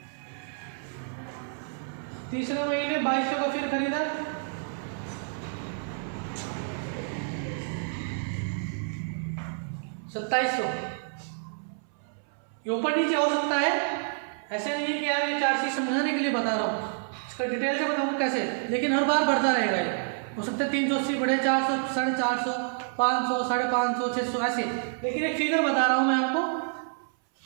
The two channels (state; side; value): silent; left; 59 dB below the other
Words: तीसरे महीने 2200 का फिर खरीदा, 2700। ये ऊपर नीचे हो सकता है, ऐसे नहीं है कि यार ये 4 चीज समझाने के लिए बता रहा हूँ, इसका डिटेल से बताऊँ कैसे, लेकिन हर बार बढ़ता रहेगा। ये हो सकता है 380 बढ़े, 400, 450, 500, 550, 600 ऐसे, लेकिन एक फिगर बता रहा हूँ मैं आपको।